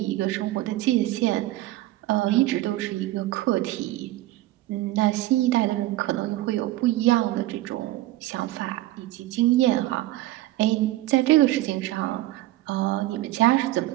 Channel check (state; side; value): quieter; left; 16.2 dB